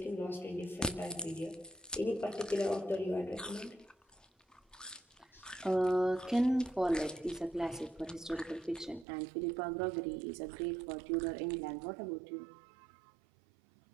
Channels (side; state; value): left; drops out; at 9.1 s